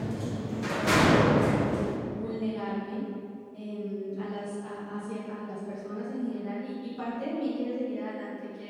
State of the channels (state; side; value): identical; both; correlation 1.00